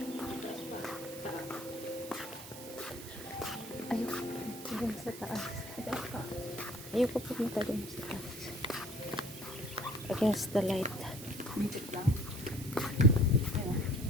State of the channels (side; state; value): right; noise; hiss, 14 dB below the sound